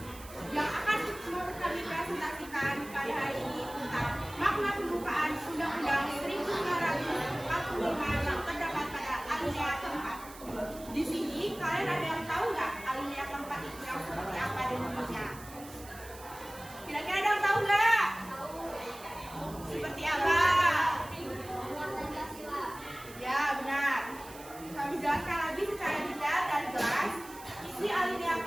Yang akan kami presentasikan pada hari ini tentang makna pembukaan Undang-Undang 1945 yang terdapat pada alinea keempat. Di sini kalian ada yang tahu nggak alinea keempat itu yang seperti apa dan bunyinya? Kira-kira ada yang tahu nggak? Seperti apa? Ya benar. Kami jelaskan lagi secara detail dan jelas isi alinea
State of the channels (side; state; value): right; noise; hiss, 17 dB below the sound